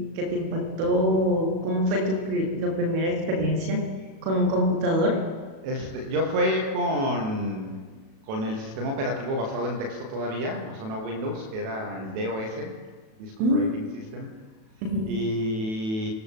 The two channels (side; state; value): left; late; 37 ms